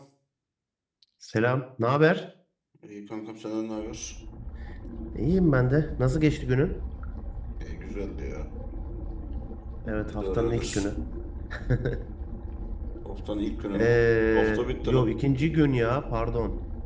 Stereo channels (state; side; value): identical; both; correlation 1.00